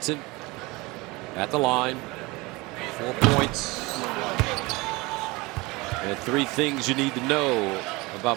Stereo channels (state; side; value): quieter; left; 23.5 dB